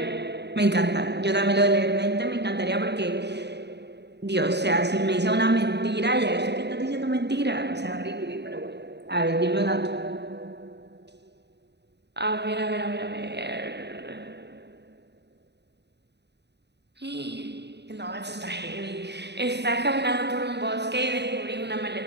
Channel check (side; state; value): left; late; 0.50 ms